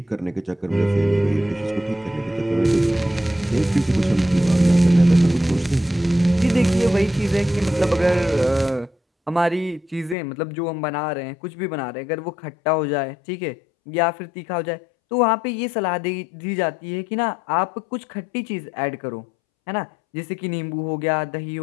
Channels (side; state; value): right; drops out; at 10.2 s